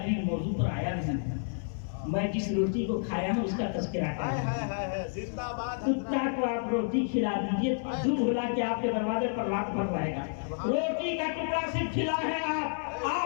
موضوع پر آیا نہیں، میں جس روٹی کو کھایا ہوں اس کا تذکرہ کر رہا ہوں۔ ہے زندہ باد کتا کو آپ روٹی کھلا دیجئے، دودھ ملا کے آپ کے دروازے پر رات بھر رہے گا۔ روٹی کا ٹکڑا صرف کھلا ہے،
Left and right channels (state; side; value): silent; right; 58 dB below the other